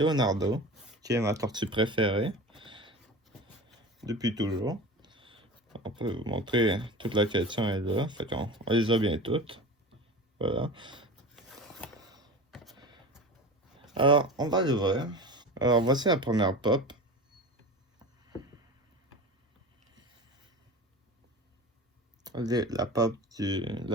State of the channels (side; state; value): both; normal; correlation 0.33